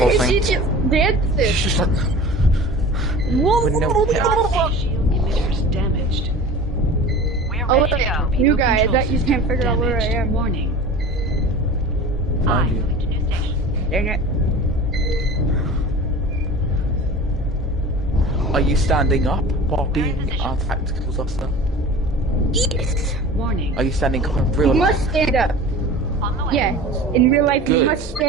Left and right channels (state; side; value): normal; both; correlation 0.38